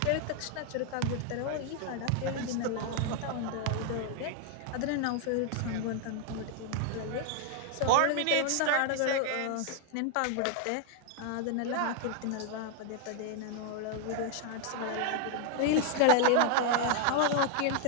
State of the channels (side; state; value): both; different; correlation 0.00